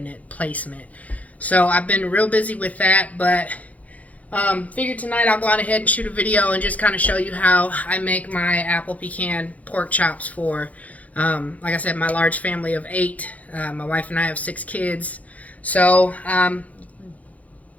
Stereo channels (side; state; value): right; late; 0.071 ms